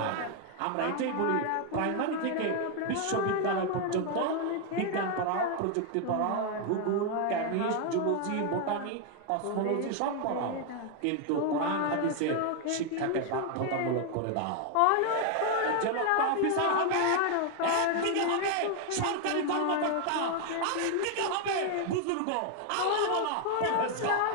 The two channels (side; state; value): both; different; correlation 0.01